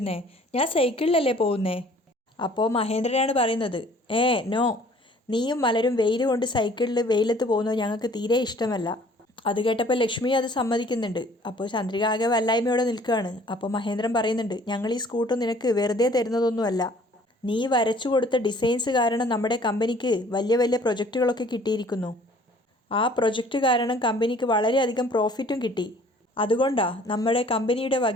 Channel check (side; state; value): both; normal; correlation 0.55